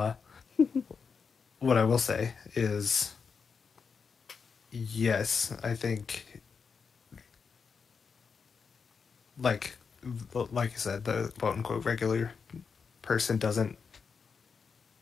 what I will say is, yes, I think like like you said, the quote unquote regular person doesn't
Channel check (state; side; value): quieter; right; 5.7 dB